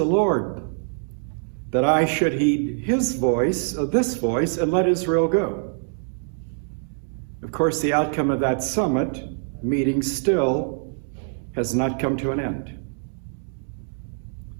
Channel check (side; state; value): left; silent; digital silence